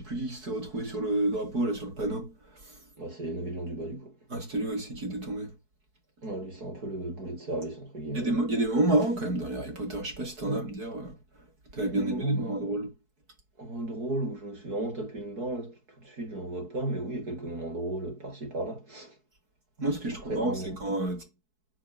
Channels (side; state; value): left; late; 4.6 ms